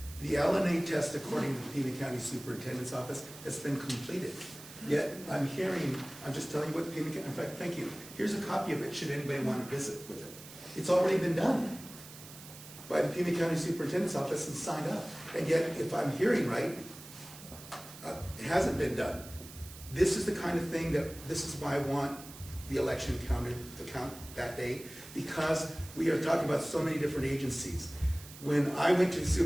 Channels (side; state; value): right; noise; hiss, 16 dB below the sound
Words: The LNA test, according to the Pima County Superintendent's Office, has been completed. Yet, I'm just telling you what Pima County, in fact, thank you. Here's a copy of it, should anybody want to visit with it. It's already been done by the Pima County Superintendent's Office and signed up. And yet, if I'm hearing right, it hasn't been done. This is the kind of thing this is why I want the election counted to count that day, because we are talking about so many different agencies. When I went to the